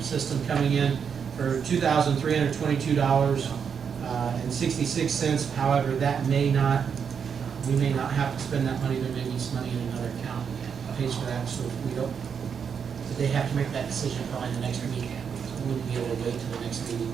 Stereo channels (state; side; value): quieter; left; 6.9 dB